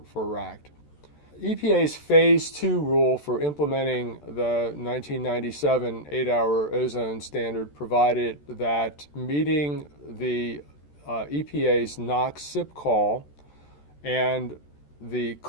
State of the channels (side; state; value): right; late; 14 ms